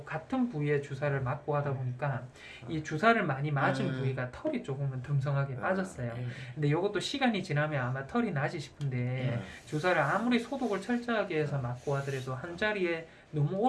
같은 부위에 주사를 맞고 하다 보니까 이 주사를 많이 맞은 부위가 털이 조금은 듬성하게 빠졌어요. 근데 이것도 시간이 지나면 아마 털이 나지 싶은데 주사를 아무리 소독을 철저하게 해서 맞고 하더라도 한 자리에 너무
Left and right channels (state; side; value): identical; both; correlation 1.00